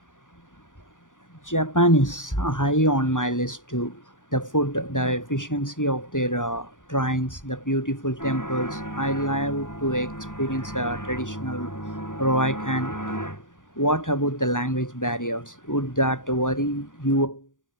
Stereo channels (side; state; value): right; late; 0.88 ms